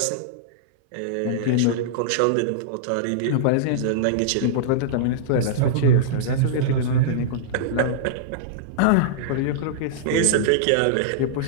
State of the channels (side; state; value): both; different; correlation -0.02